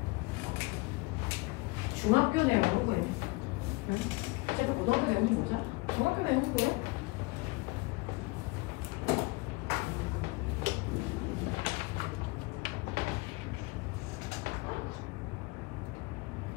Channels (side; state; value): right; quieter; 24.5 dB